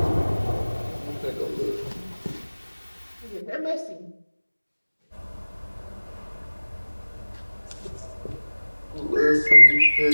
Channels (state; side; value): inverted; both; correlation -1.00